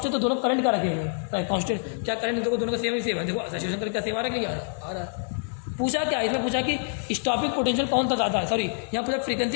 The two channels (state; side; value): silent; right; digital silence